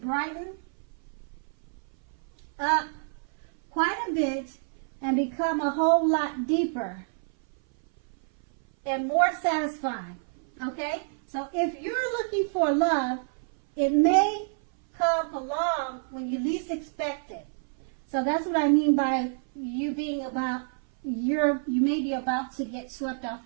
up quite a bit and become a whole lot deeper and more satisfying. Okay? So if you're looking for love, it may come along when you least expect it. So that's what I mean by you being about, you may be about to get swept off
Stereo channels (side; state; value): left; silent; 57 dB below the other